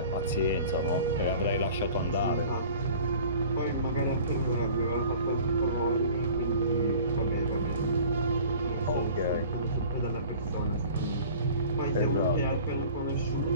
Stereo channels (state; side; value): inverted; both; correlation -0.45